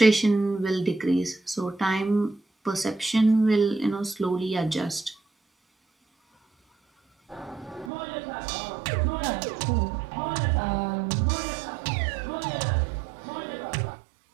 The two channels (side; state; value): left; drops out; at 7.9 s